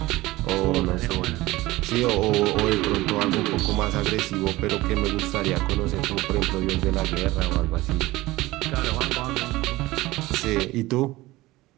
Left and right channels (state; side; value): quieter; left; 18.9 dB